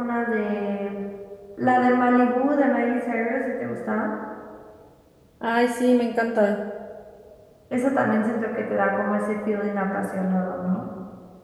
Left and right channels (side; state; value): both; identical; correlation 1.00